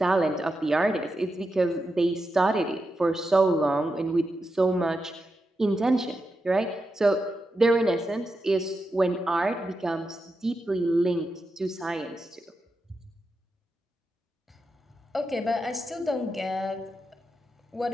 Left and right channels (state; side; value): normal; both; correlation 0.88